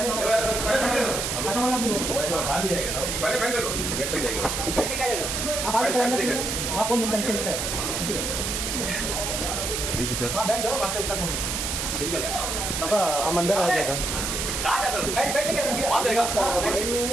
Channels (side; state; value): right; noise; hiss, 2 dB below the sound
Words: विजिटर्स हम अंदर आ जाएगा.